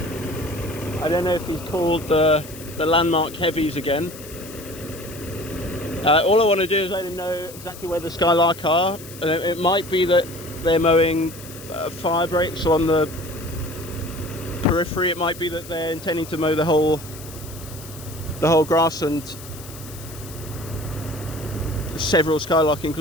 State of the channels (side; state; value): left; noise; hiss, 16 dB below the sound